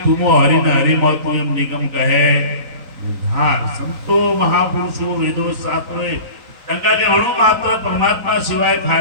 तुमो हरि न हरि म तू एम निगम कहे बुधार संतो महापुरुषो वेदो शास्त्रोए तंका के अणु मात्र परमात्मा सिवाय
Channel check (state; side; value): late; left; 3.9 ms